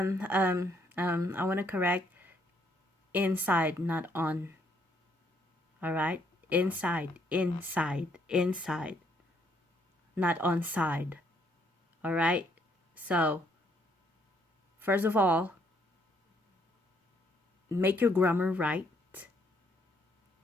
want to correct. Inside, not on. Alright? Inside. Not on side. All right? So, first of all, make your grammar right.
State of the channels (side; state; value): both; normal; correlation 0.70